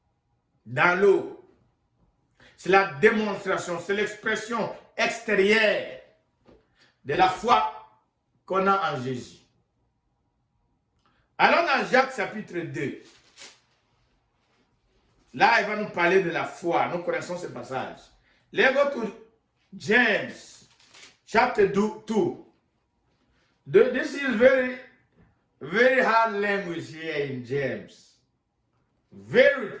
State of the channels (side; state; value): both; identical; correlation 1.00